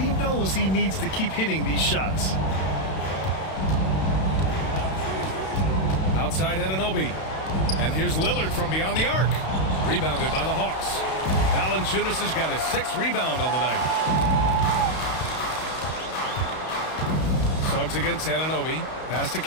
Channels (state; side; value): late; right; 32 ms